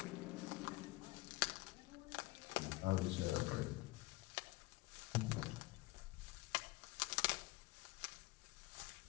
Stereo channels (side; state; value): right; quieter; 21.7 dB